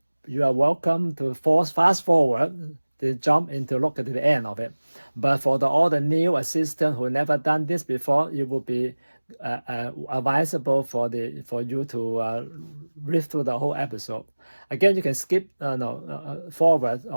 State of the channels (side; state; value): both; inverted; correlation -1.00